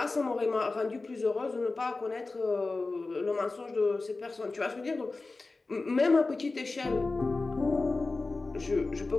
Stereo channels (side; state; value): right; quieter; 3.5 dB